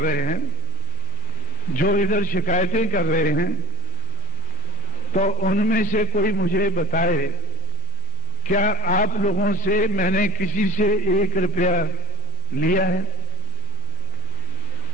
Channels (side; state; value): both; normal; correlation 0.22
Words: हैं, जो इधर शिकायतें कर रहे हैं, तो उनमें से कोई मुझे बताए, क्या आप लोगों से मैंने किसी से 1 रुपया लिया है?